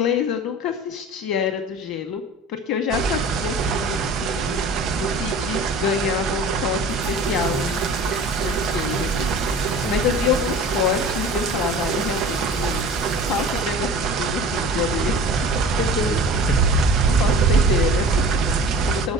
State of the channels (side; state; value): both; normal; correlation 0.40